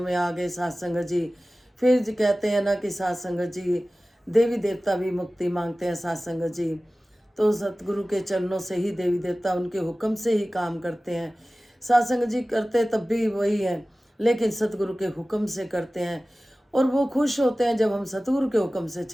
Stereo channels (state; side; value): normal; both; correlation 0.97